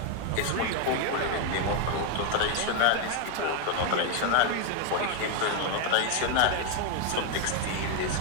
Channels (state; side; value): different; both; correlation 0.01